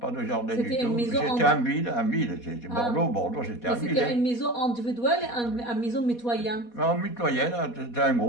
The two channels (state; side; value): late; right; 4.2 ms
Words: de jardin du C'était une tout. maison C'était en ville. C'était Ah. Bordeaux, c'était Mais en ville. c'était une Hein. maison individuelle et une maison mitoyenne. En mitoyenne, c'était un